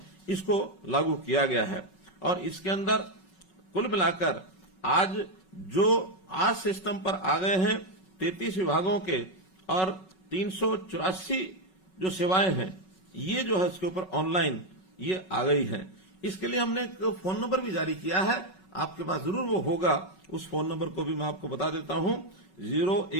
इसको लागू किया गया है। और इसके अंदर कुल मिलाकर आज जो आज सिस्टम पर आ गए हैं 33 विभागों के और 384 जो सेवाएं हैं, ये जो है इसके ऊपर ऑनलाइन ये आ गई हैं। इसके लिए हमने एक फोन नंबर भी जारी किया है, आपके पास जरूर वो होगा। उस फोन नंबर को भी मैं आपको बता देता हूं,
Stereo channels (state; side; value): late; right; 5.4 ms